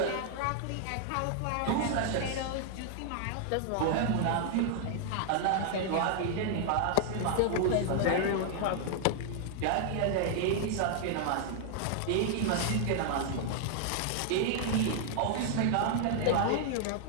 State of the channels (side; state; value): both; different; correlation 0.00